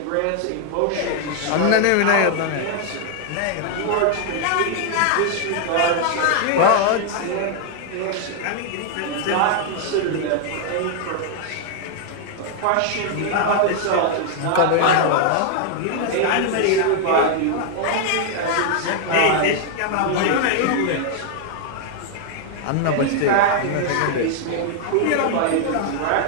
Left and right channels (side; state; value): both; different; correlation 0.00